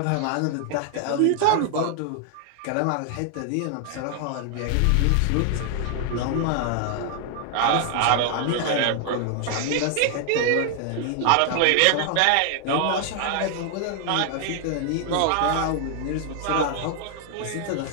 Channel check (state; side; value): different; both; correlation 0.00